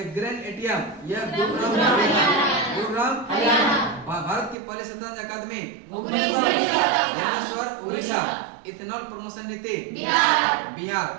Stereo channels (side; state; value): left; drops out; at 4.5 s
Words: ग्रेन एटीएम यह गुरुग्राम, भारत की पहली शतरंज अकादमी भुवनेश्वर, उड़ीसा। इथेनॉल प्रमोशन नीति बिहार।